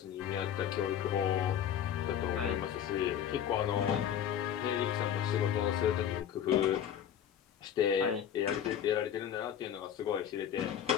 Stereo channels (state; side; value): quieter; right; 9.5 dB